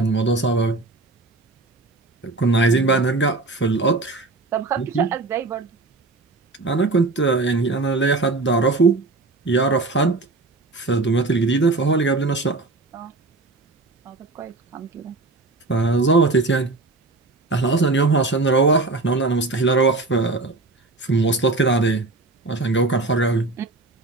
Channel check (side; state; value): left; quieter; 3.4 dB